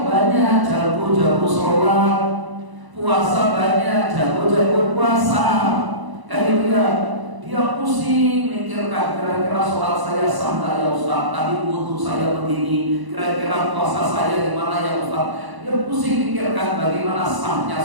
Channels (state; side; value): late; left; 1.0 ms